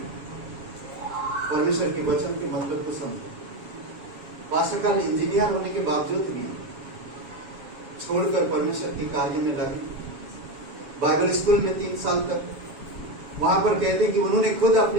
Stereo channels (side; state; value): left; late; 7.2 ms